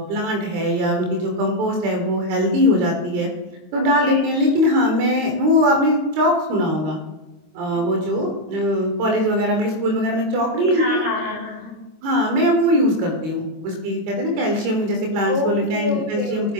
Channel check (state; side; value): late; left; 25 ms